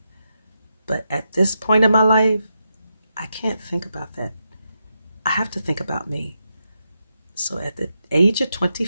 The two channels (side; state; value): both; inverted; correlation -0.85